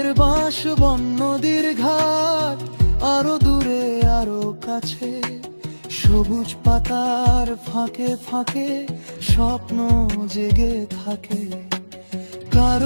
বাঁশ বন, নদীর ঘাট আরো দূরে আরো কাছে। সবুজ পাতার ফাঁকে ফাঁকে স্বপ্ন জেগে থাকে।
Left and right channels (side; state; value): both; inverted; correlation -1.00